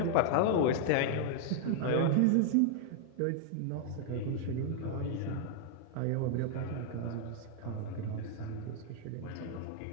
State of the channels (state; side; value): different; both; correlation 0.00